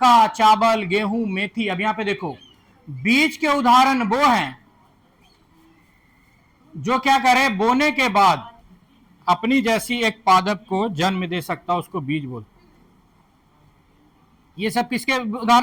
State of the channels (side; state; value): both; identical; correlation 1.00